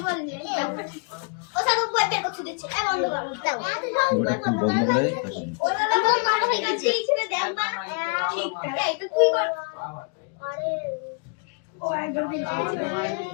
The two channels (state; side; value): quieter; right; 37.3 dB